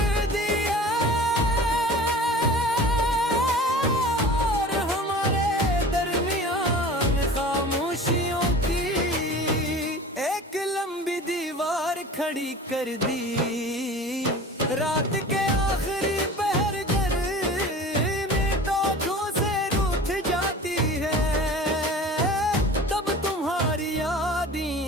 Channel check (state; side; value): normal; both; correlation 0.39